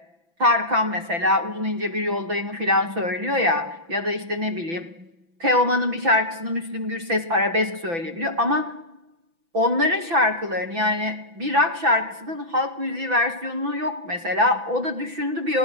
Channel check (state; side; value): late; left; 6.0 ms